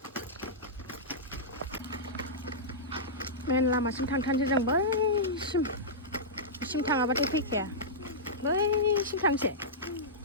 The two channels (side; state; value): both; normal; correlation -0.13